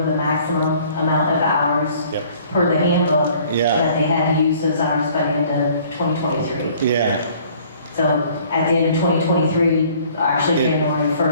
the maximum amount of hours Yep. per the handbook. Yeah. That they had to use those hours by the end of 2023. Yeah. So at the end of 2023, actually Yeah. January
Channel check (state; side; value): inverted; both; correlation -0.56